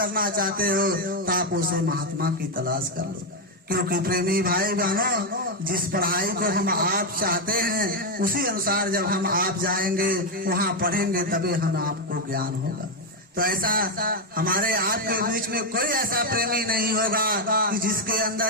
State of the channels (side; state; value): both; normal; correlation 0.04